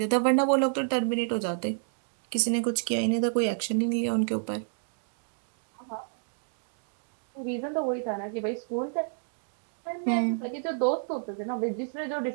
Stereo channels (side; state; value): left; silent; digital silence